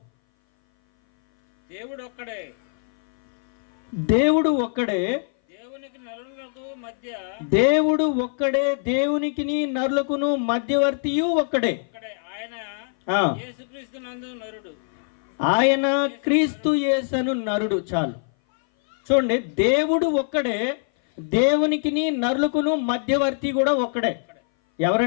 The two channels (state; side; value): silent; right; 58 dB below the other